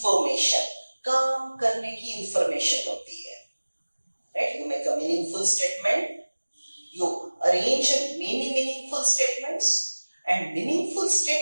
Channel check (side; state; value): both; inverted; correlation -1.00